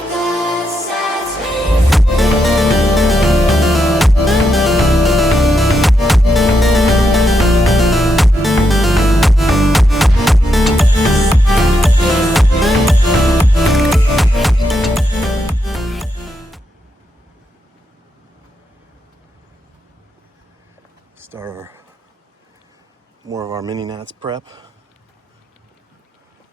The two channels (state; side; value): normal; both; correlation 0.82